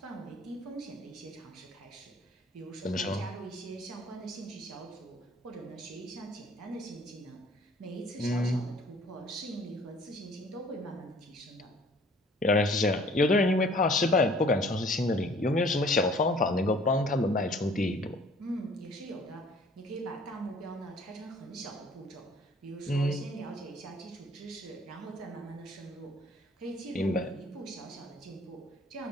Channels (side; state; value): both; normal; correlation 0.54